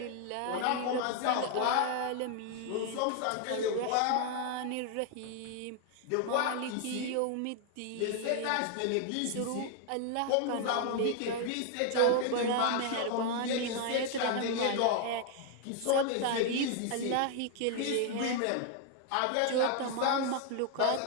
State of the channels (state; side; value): different; both; correlation 0.00